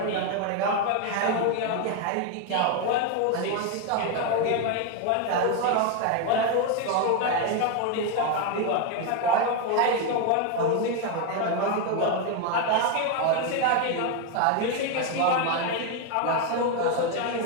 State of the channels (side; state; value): both; different; correlation 0.01